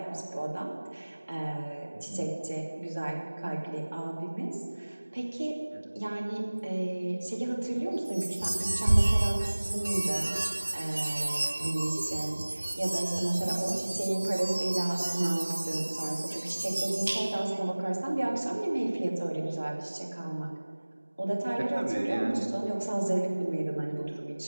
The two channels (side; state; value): both; inverted; correlation -1.00